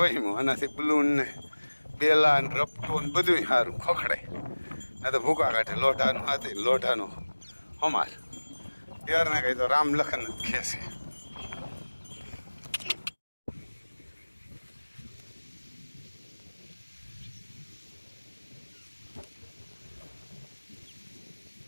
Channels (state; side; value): inverted; both; correlation -1.00